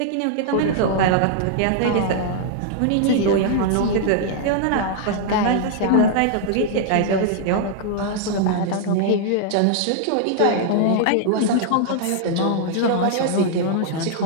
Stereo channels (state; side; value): different; both; correlation -0.01